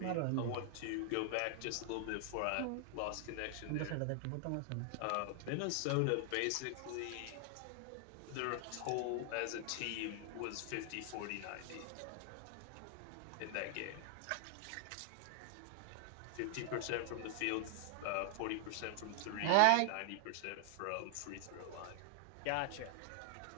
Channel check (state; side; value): different; both; correlation 0.00